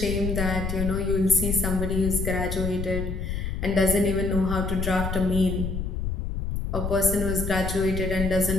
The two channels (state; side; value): noise; left; rumble, 3 dB below the sound